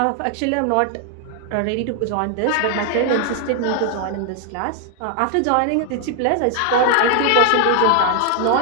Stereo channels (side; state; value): both; different; correlation 0.00